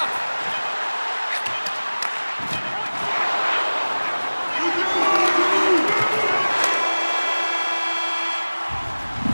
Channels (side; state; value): both; inverted; correlation -1.00